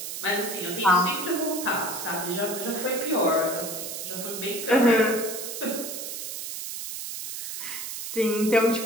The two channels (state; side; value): noise; right; hiss, 6 dB below the sound